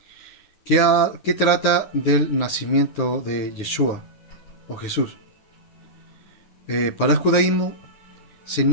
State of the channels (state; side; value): late; right; 10 ms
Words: que trata del nacimiento de Yeshua o Jesús. Para el judaísmo se